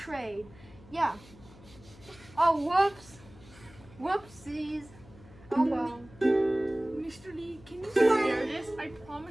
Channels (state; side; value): noise; left; hum, 22 dB below the sound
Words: Yeah. Oh, whoops. Whoopsies. Oh well. Mr. Lee, can you spare this? I promise I